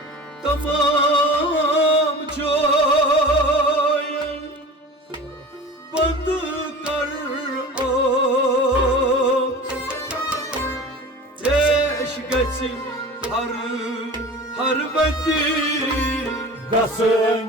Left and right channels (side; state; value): both; normal; correlation 0.36